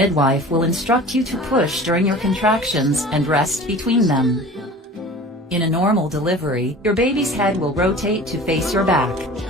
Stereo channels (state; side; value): normal; both; correlation 0.40